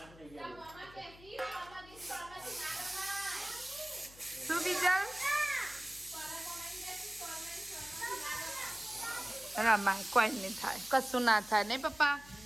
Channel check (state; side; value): noise; left; hum, 21 dB below the sound